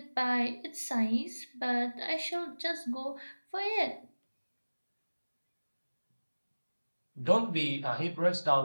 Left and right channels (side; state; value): both; inverted; correlation -1.00